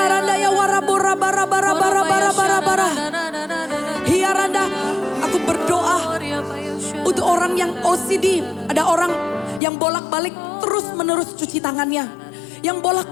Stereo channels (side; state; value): right; drops out; at 9.6 s